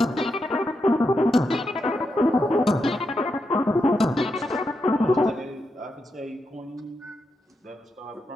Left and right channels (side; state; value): both; normal; correlation 0.85